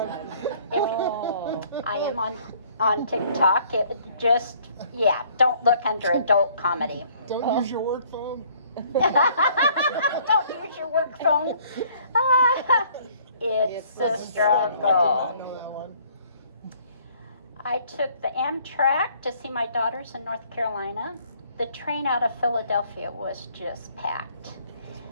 If I am on TikTok, it just, yeah, don't look under adult comedy. Don't use your work phone. Don't use your work phone. It's a struggle. I took the Amtrak to see my daughters in North Carolina. The train out of Philadelphia was just packed.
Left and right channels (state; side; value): inverted; both; correlation -0.60